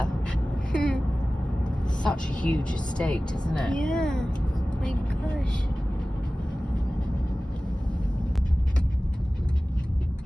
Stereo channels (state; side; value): normal; both; correlation 0.97